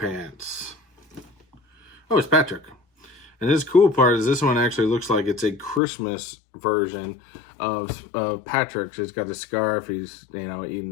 Oh, it's Patrick. And this cool part is this one actually looks like it's a Christmas version of Patrick's. It's got a scarf. He's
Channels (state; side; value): drops out; right; at 5.8 s